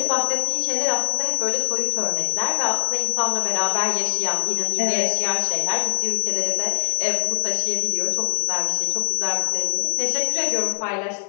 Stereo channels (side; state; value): right; silent; digital silence